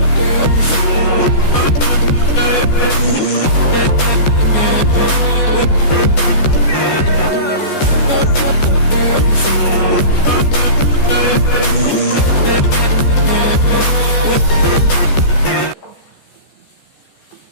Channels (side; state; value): right; late; 14 ms